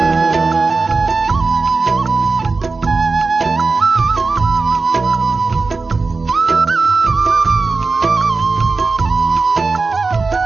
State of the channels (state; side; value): quieter; left; 4.1 dB